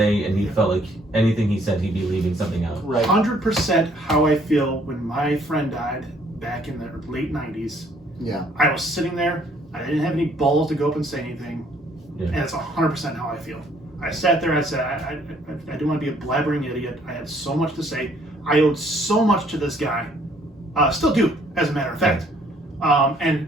and he felt like anything he said, he'd be leaving something out. Right. 100% how I feel when my friend died back in the late 90s. Yeah. I was sitting there. I didn't have any balls to go up and say anything. Yeah. And it's 100% how I feel. I sat there. I said, I didn't want to be a blabbering idiot. I had so much to say. I owed so much to this guy. Still do, as a matter of fact. And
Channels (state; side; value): normal; both; correlation 0.63